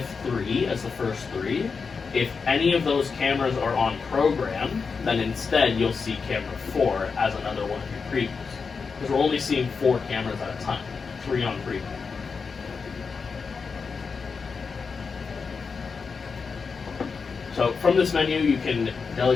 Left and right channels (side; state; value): right; quieter; 5.2 dB